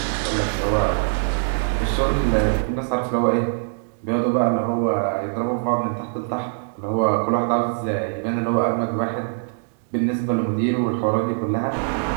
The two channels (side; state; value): left; silent; digital silence